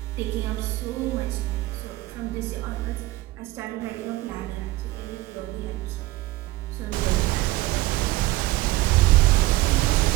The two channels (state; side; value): quieter; left; 18.1 dB